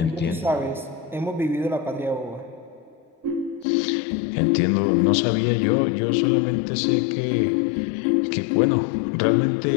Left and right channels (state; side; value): drops out; right; at 3.7 s